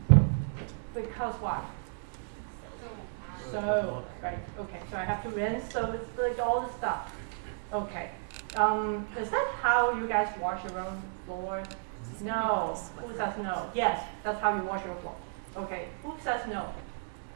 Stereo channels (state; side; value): silent; left; digital silence